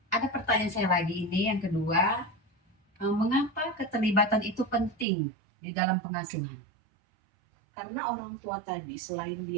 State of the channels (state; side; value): drops out; left; at 5.1 s